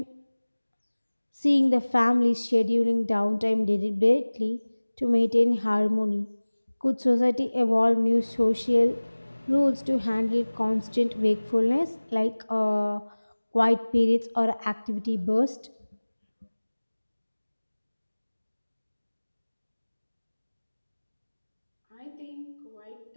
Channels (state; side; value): inverted; both; correlation -1.00